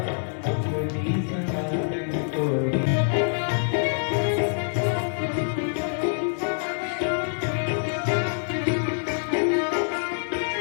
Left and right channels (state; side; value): silent; right; digital silence